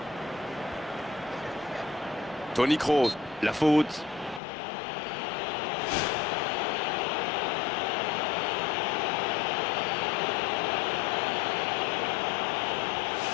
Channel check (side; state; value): right; drops out; at 4.4 s